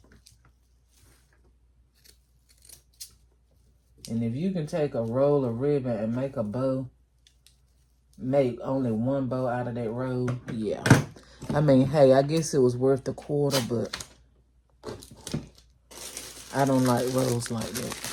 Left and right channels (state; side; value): identical; both; correlation 1.00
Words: And if you can take a roll of ribbon and make a bow, make only one bow out of that roll, yeah. I mean, hey, I guess it was worth the quarter, but I don't like rolls like that.